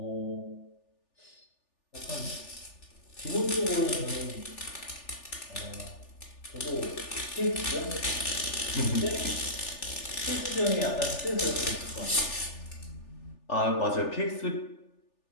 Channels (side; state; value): right; late; 3.4 ms